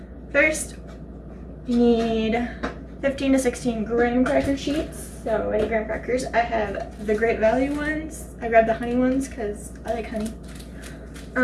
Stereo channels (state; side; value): identical; both; correlation 1.00